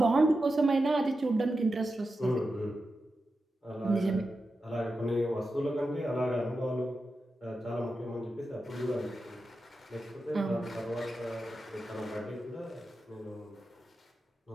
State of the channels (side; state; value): both; normal; correlation 0.90